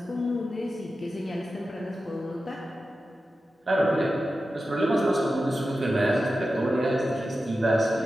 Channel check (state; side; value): normal; both; correlation 0.92